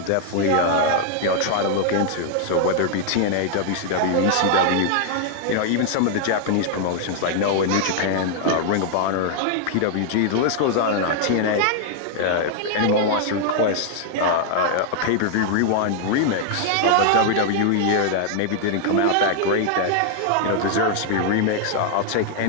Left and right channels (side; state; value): both; different; correlation 0.00